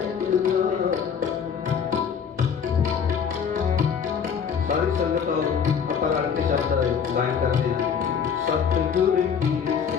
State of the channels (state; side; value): quieter; right; 7.0 dB